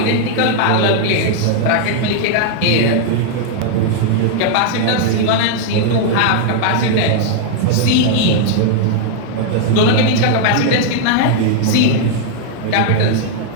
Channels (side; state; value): both; different; correlation -0.01